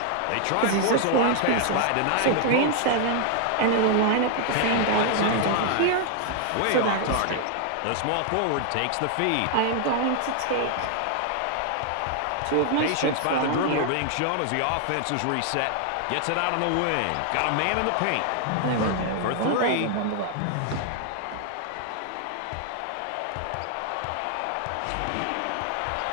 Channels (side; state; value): both; different; correlation 0.00